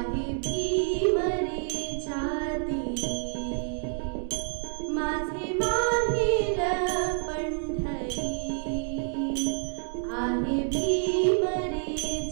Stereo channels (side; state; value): left; silent; 59 dB below the other